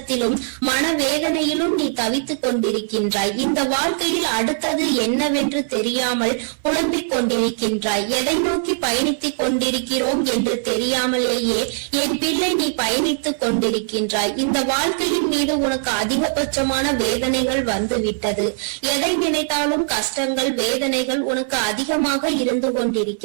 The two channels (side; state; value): left; silent; digital silence